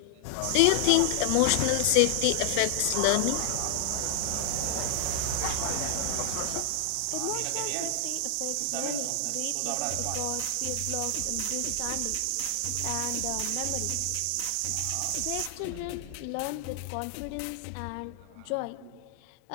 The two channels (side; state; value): both; different; correlation 0.00